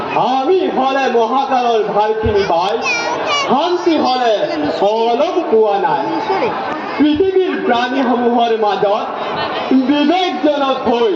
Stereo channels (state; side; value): identical; both; correlation 1.00